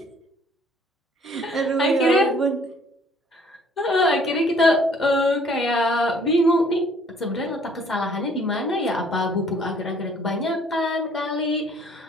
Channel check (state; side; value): normal; both; correlation 0.59